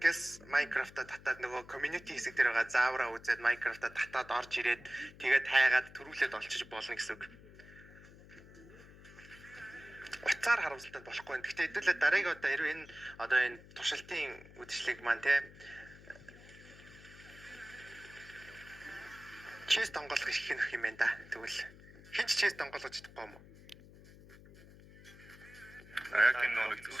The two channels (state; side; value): noise; left; hum, 20 dB below the sound